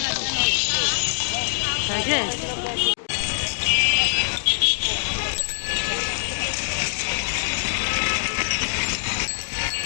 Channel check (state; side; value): silent; right; digital silence